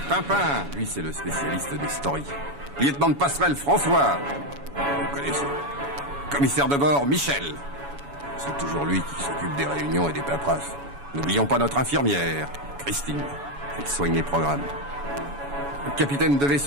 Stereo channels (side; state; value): left; late; 7.1 ms